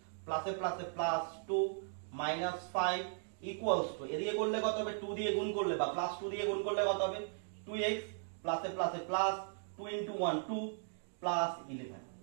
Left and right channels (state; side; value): silent; left; digital silence